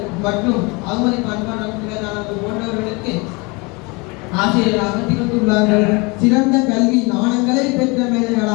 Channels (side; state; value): right; quieter; 27.8 dB